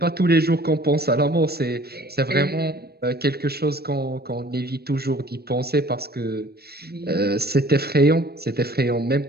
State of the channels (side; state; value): left; late; 0.46 ms